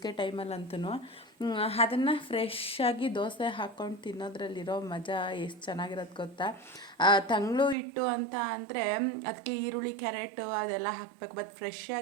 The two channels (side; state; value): left; drops out; at 7.8 s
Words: ಟೈಮಲ್ಲಂತೂ. ಅದನ್ನು ಫ್ರೆಶ್ಶಾಗಿ ದೋಸೆ ಹಾಕ್ಕೊಂಡು ತಿನ್ನೋದ್ರಲ್ಲಿರೋ ಮಜಾ ಎಷ್ಟು ಚೆನ್ನಾಗಿರೋದು ಗೊತ್ತಾ. ತಂಗ್ಳು ಹಿಟ್ಟು ಅಂತ ಅಂದರೆ ಅದಕ್ಕೆ ಈರುಳ್ಳಿ ಕ್ಯಾರೆಟು ಅದೆಲ್ಲ ಹಾಕಬೇಕು. ಬಟ್ ಫ್ರೆಶ್